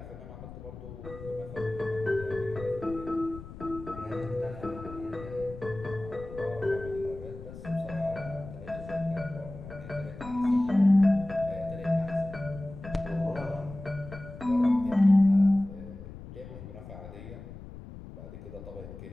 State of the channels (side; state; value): left; noise; rumble, 13 dB below the sound